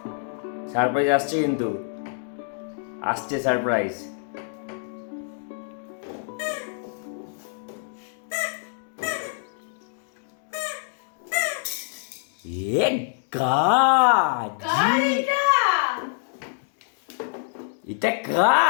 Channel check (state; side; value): silent; right; digital silence